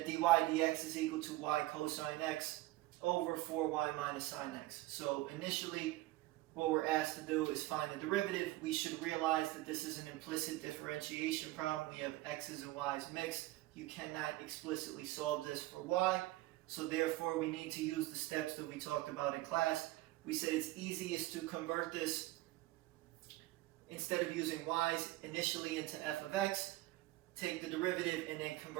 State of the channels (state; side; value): quieter; left; 18.1 dB